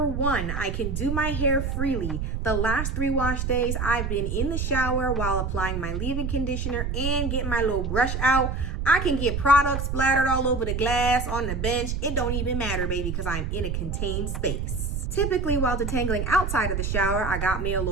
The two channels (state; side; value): noise; right; rumble, 2 dB below the sound